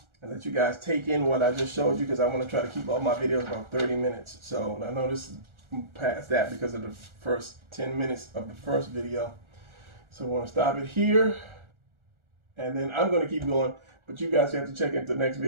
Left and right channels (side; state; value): left; late; 1.4 ms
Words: and let you guys take in what I just showed you, because I want to try to keep all my videos about 30 minutes. So I know this is past that because of the first 10 minutes of the first video. So I want to stop it here, and then I'm going to keep going, but you guys have to check into the next